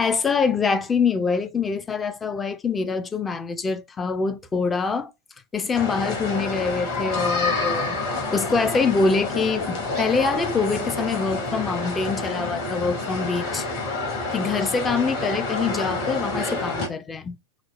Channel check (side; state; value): right; quieter; 4.0 dB